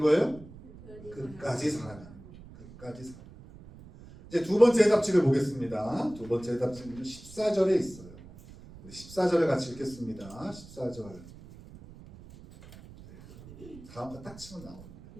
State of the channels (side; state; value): right; noise; rumble, 19 dB below the sound